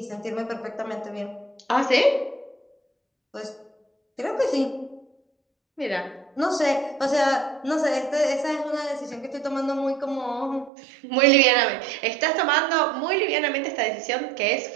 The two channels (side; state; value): left; drops out; at 10.7 s